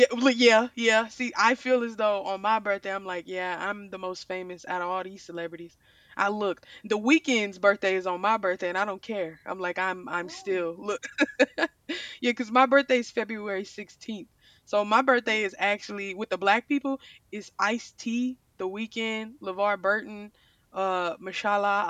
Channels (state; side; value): identical; both; correlation 1.00